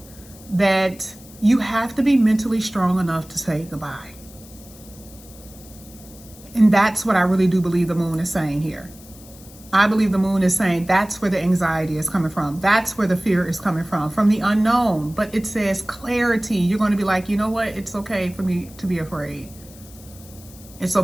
that you have to be mentally strong enough to say goodbye. And that's what I really do believe the moon is saying here. I believe the moon is saying that's where the anxiety is coming from. That's where the fear is coming from the unknown. But it says clarity. You're going to be like, you know what? It's okay for me to be afraid. It's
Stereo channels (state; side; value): noise; left; hiss, 21 dB below the sound